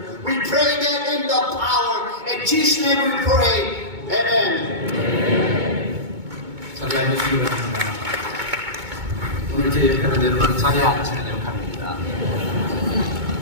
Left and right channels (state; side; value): late; left; 2.2 ms